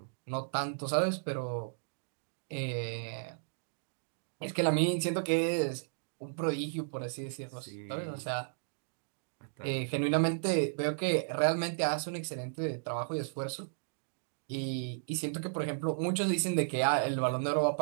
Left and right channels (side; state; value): left; silent; digital silence